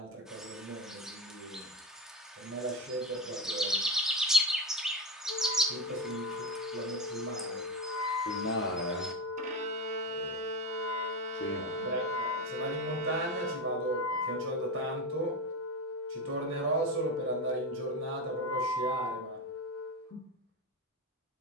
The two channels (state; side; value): normal; both; correlation 0.18